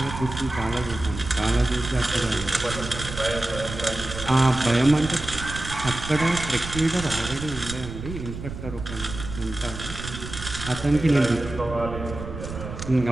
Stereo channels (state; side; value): noise; right; rumble, 9 dB below the sound